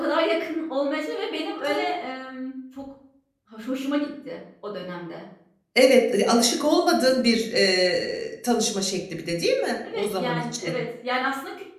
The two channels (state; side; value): identical; both; correlation 1.00